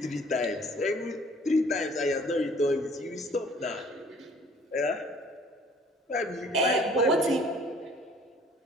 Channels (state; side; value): normal; both; correlation 0.55